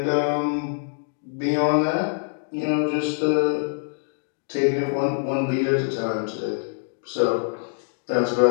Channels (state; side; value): silent; right; digital silence